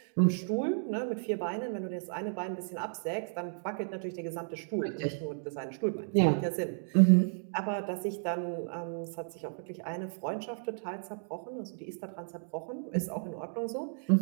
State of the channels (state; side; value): silent; left; digital silence